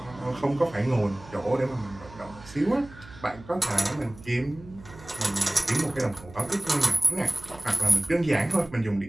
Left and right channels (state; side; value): noise; right; hum, 20 dB below the sound